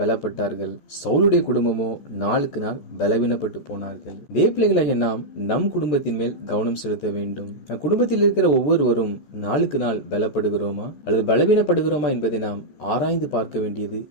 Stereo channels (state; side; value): late; right; 14 ms